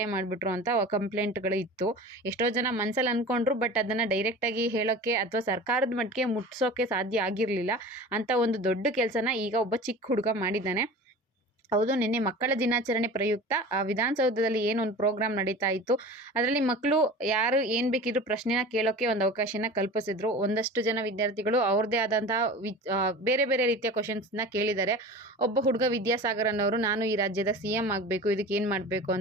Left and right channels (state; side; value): normal; both; correlation 0.36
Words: ಮಾಡಿಬಿಟ್ರು ಅಂತ ಕಂಪ್ಲೇಂಟ್ಗಳು ಇತ್ತು. ಎಷ್ಟೋ ಜನ ಮನಸ್ಸಲ್ಲಿ ಅಂದ್ಕೊಂಡ್ರು, ಬಟ್ ಅದನ್ನು ಡೈರೆಕ್ಟಾಗಿ ಹೇಳೋಕ್ಕೆ ಅಥವಾ ಸರ್ಕಾರದ ಮಟ್ಟಿಗೆ ಮುಟ್ಸೋಕ್ಕೆ ಸಾಧ್ಯ ಆಗಿರಲಿಲ್ಲ. ಅಂತ ಒಂದು ದೊಡ್ಡ ಕೆಲಸನ ಈಗ ಒಬ್ಬ ಚಿಕ್ಕ ಹುಡುಗ ಮಾಡಿದ್ದಾನೆ. ಹೌದು, ನಿನ್ನೆ ಮಕ್ಕಳ ದಿನಾಚರಣೆ ಪ್ರಯುಕ್ತ ವಿಧಾನಸೌಧದಲ್ಲಿ ಏನೊಂದು ಪ್ರೋಗ್ರಾಮ್ ನಡೀತಾ ಇತ್ತು. ಅದರಲ್ಲಿ ಮಕ್ಕಳು ಯಾರು ಏನು ಬೇಕಿದ್ರು ಪ್ರಶ್ನೆನ ಕೇಳೋಕ್ಕೆ ಒಂದು ಅವಕಾಶನ ಕಲ್ಪಿಸಿದ್ರು. ಒಂದಷ್ಟು ಜನ ವಿದ್ಯಾರ್ಥಿಗಳು ಅವ್ರದ್ದೇ ಆದಂತಹ ಬೇರೆ ಬೇರೆ ರೀತಿಯ ಕ್ವಶನ್ಸ್ನ ಕೇಳಿದ್ದಾರೆ. ಒಬ್ಬ ಹುಡುಗ ವಿದ್ಯಾಸಾಗರ್ ಅನ್ನೋರು, ನಾನು ಈ ರಾಜ್ಯದ CM ಆಗಬೇಕು, ಇದಕ್ಕೆ ಏನು ಮಾಡಬೇಕು